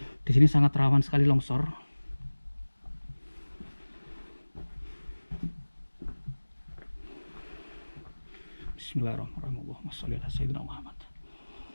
di sini sangat rawan sekali longsor. Bismillahirrahmanirrahim. Allahumma sholli ala sayyidina Muhammad.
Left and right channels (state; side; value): inverted; both; correlation -1.00